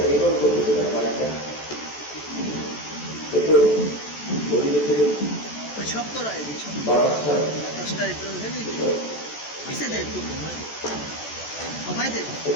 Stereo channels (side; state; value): right; late; 14 ms